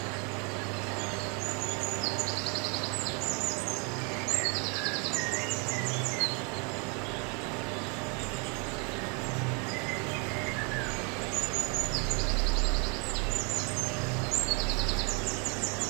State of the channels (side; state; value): left; quieter; 34.2 dB